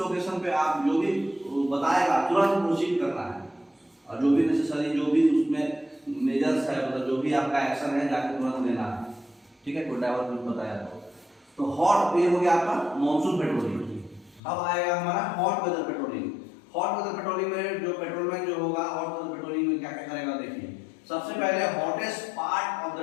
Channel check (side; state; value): right; drops out; at 14.4 s